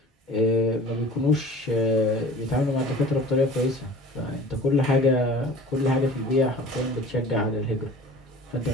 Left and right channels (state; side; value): normal; both; correlation 0.43